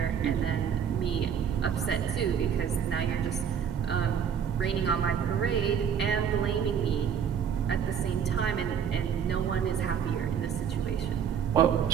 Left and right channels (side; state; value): left; quieter; 7.9 dB